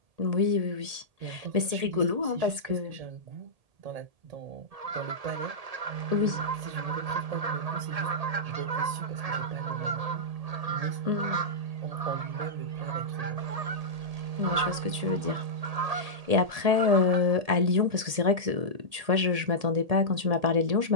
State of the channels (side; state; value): left; late; 1.8 ms